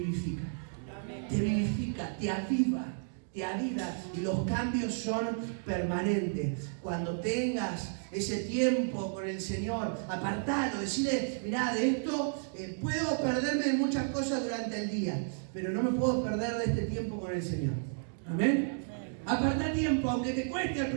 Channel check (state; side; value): silent; left; digital silence